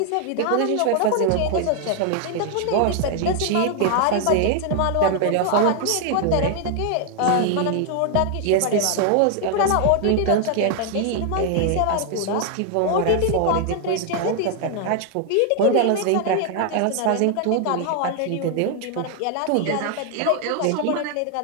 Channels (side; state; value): both; different; correlation 0.00